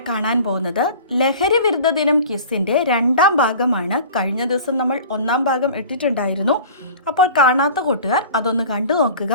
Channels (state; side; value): inverted; both; correlation -0.41